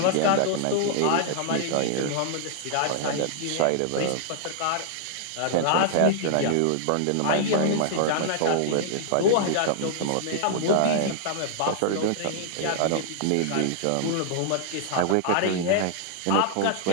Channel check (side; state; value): both; different; correlation -0.01